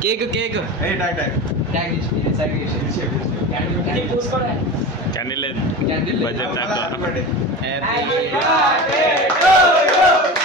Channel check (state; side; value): normal; both; correlation 0.29